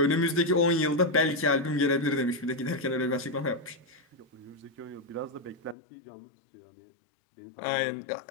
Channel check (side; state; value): right; drops out; at 5.8 s